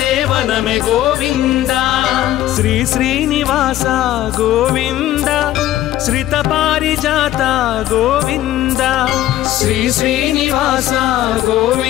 గోవింద శ్రీ శ్రీనివాస గోవింద శ్రిత పారిజాత గోవింద శ్రీ శ్రీనివాస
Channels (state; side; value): quieter; right; 13.8 dB